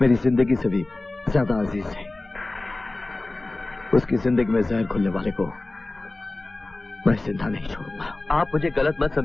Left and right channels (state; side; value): quieter; right; 3.0 dB